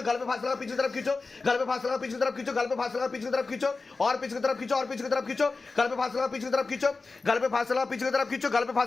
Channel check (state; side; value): quieter; right; 3.9 dB